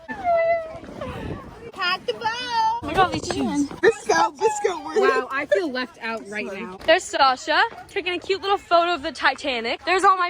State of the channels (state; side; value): identical; both; correlation 1.00